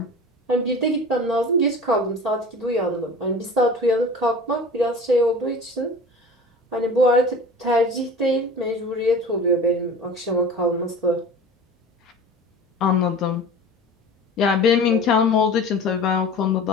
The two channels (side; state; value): both; normal; correlation 0.38